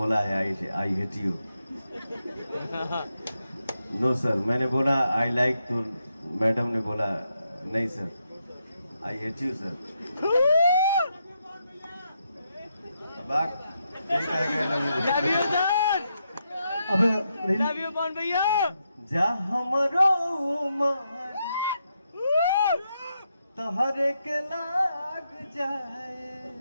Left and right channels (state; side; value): inverted; both; correlation -0.82